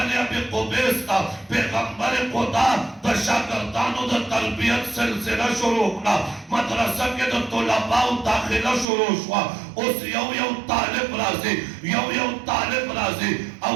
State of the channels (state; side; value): drops out; left; at 8.8 s